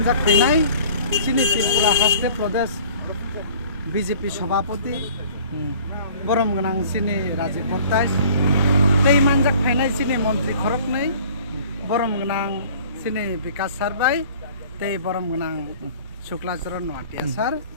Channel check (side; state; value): both; inverted; correlation -0.49